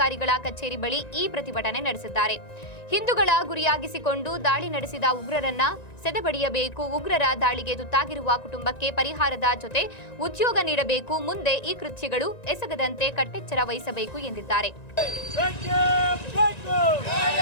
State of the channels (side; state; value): right; late; 1.9 ms